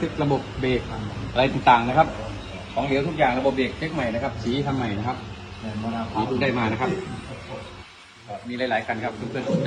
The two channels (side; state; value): both; identical; correlation 1.00